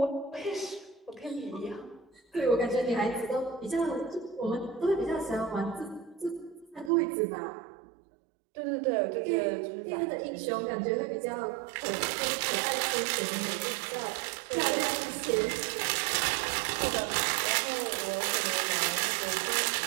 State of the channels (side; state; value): left; drops out; at 6.9 s